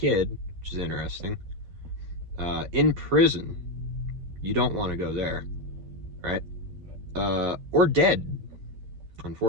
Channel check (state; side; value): late; left; 11 ms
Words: which is interesting, in prison. You don't want to go there, right? Or dead,